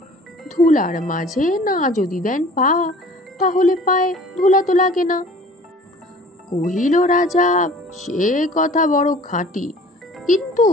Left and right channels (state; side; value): normal; both; correlation 0.48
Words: ধুলার মাঝে না যদি দেন পা, তাহলে পায়ে ধুলা তো লাগে না। কহিল রাজা, সে কথা বড় খাঁটি, কিন্তু